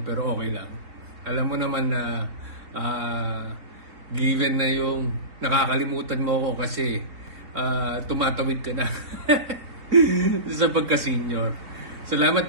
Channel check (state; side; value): late; left; 3.9 ms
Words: pero okay lang. Alam mo naman na given na yung nakakalimutan mo ako kasi tumatawid ka na sa pagka-senior.